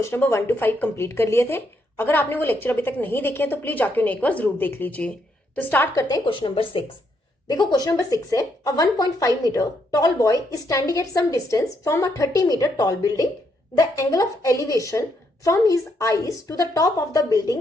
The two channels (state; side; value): normal; both; correlation 0.76